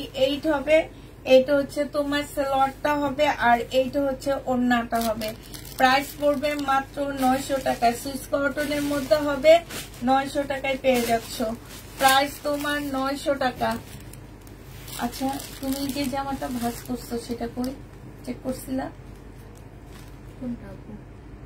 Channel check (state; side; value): identical; both; correlation 1.00